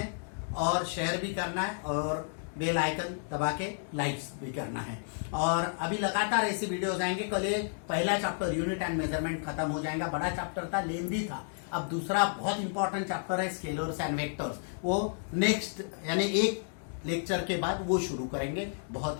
और शेयर भी करना है और बेल आइकन दबा के लाइक्स भी करना है। और अभी लगातार ऐसी वीडियोस आएंगे। कल ये पहला चैप्टर यूनिट एंड मेजरमेंट खत्म हो जाएगा, बड़ा चैप्टर था, लेंथी था। अब दूसरा बहुत इंपॉर्टेंट चैप्टर है स्केलर्स एंड वेक्टर्स, वो नेक्स्ट यानी एक लेक्चर के बाद वो शुरू करेंगे,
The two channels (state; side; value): silent; right; digital silence